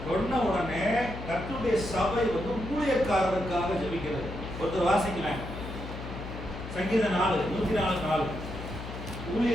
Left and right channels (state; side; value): noise; left; hum, 9 dB below the sound